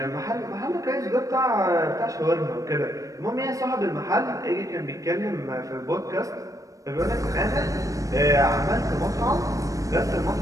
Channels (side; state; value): left; late; 0.16 ms